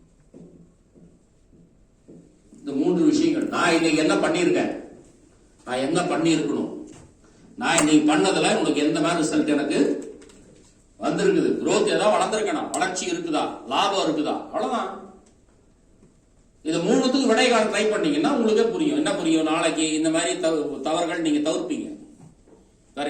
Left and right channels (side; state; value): both; identical; correlation 1.00